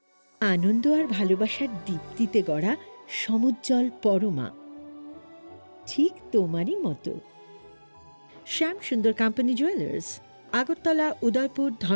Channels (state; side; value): inverted; both; correlation -1.00